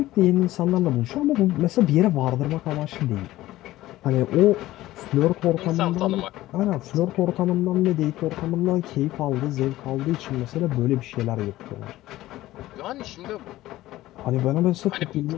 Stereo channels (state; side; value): quieter; right; 16.0 dB